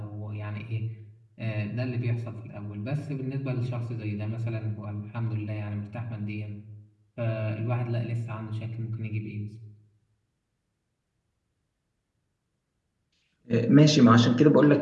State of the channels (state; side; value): identical; both; correlation 1.00